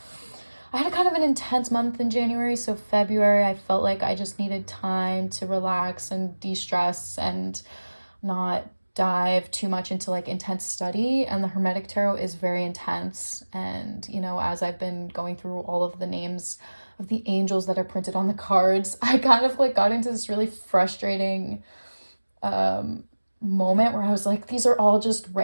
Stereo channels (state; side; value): inverted; both; correlation -1.00